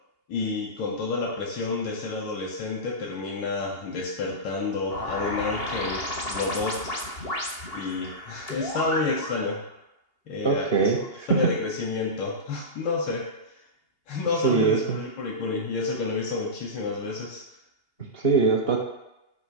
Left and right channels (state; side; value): late; right; 2.8 ms